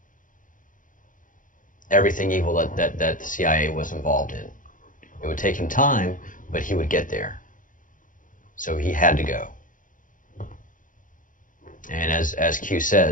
everything evil that the CIA was involved in. It would take him time, but he would get there. So he had to go. And as Q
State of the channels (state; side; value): late; right; 0.38 ms